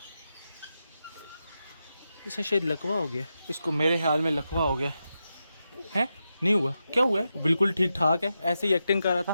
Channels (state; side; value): inverted; both; correlation -0.88